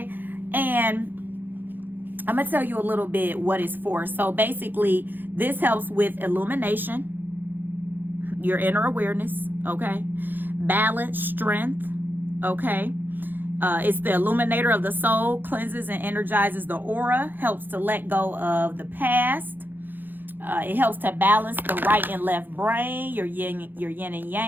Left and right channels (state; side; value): late; left; 0.091 ms